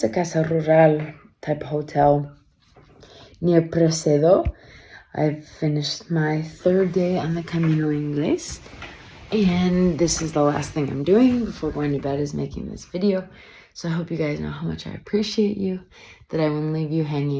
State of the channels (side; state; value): both; identical; correlation 1.00